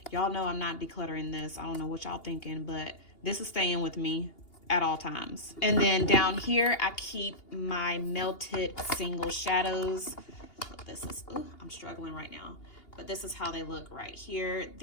Y'all know I'm not decluttering this. I don't know what y'all thinking, but this is staying with me at all times. And then down here, I keep my melted single shadows. This is, ooh, I'm struggling right now, but this is how they look right here.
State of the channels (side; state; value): right; late; 2.8 ms